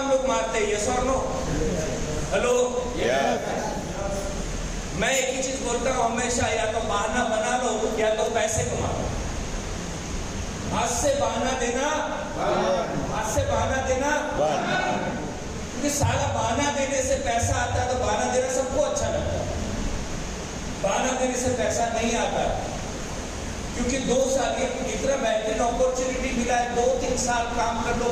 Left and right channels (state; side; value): identical; both; correlation 1.00